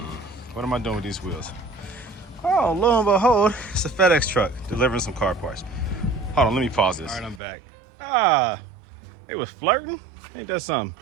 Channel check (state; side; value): drops out; left; at 7.4 s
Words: am I doing with these wheels? Oh, lo and behold, it's a FedEx truck delivering some car parts. Hold on, let me pause this. All right, I'm back. They was flirting? Ain't that something?